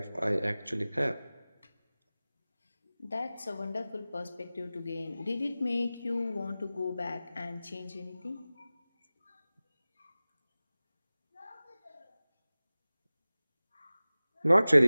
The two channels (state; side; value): inverted; both; correlation -0.97